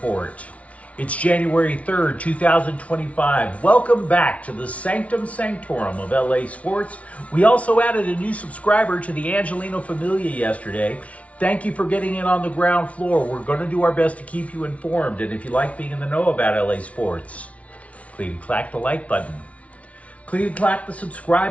It's January 3rd, 2025. Welcome back to the Sanctum Sanctorum of LA Sports. We also added a new subscriber to the Angeleno Familia yesterday. Thank you for getting in on the ground floor. We're going to do our best to keep you informed. And if you like being in the know about LA Sports, please clack the like button. Please clack the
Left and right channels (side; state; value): right; late; 0.065 ms